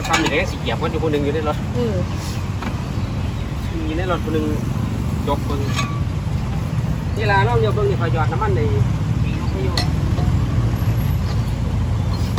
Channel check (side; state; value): both; identical; correlation 1.00